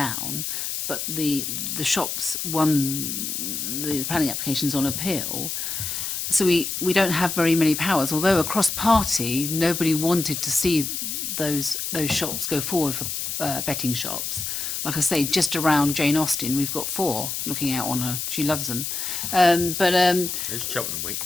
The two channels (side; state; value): left; noise; hiss, 3 dB below the sound